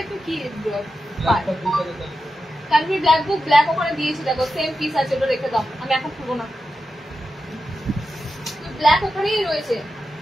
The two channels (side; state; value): both; normal; correlation 0.90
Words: একটু কি কানভি ব্ল্যাক বুক ব্ল্যাক ওখানে দিয়েছি, দেখো সেম পিস আছে, ওটা রেখে দাও, আমি এখন খুলবো না, ব্ল্যাক ওখানেই রয়েছে।